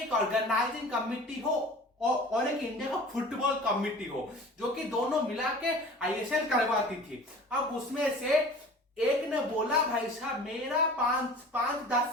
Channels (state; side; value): normal; both; correlation 0.42